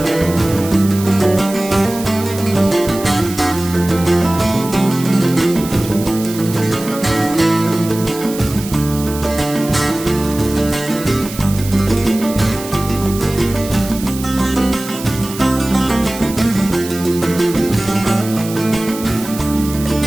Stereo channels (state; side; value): noise; right; hiss, 12 dB below the sound